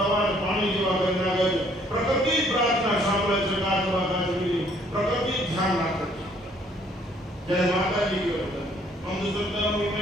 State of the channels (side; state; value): both; normal; correlation 0.62